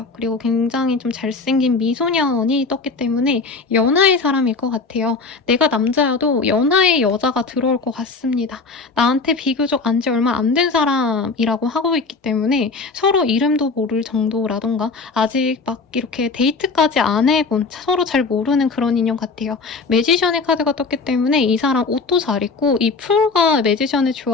그리고 굉장히 좀 잘생긴 미소년이 떴기 때문에 연하의 사람일 것 같아요. 내가 남자여도 연하의 여자가 들어올 것 같습니다. 나한테 비교적 안지 얼마 안 된 사람이라고 하고 있기 때문에 서로 이름도 모를 정도라던가 아직 막 이렇게 데이트까지 안 해본, 서로 잘 모르는 그런 인연 같아요. 매지션의 카드가 떴기 때문에 이 사람 옷도 잘 입고 이 풀과 매지션의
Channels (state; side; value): quieter; right; 4.2 dB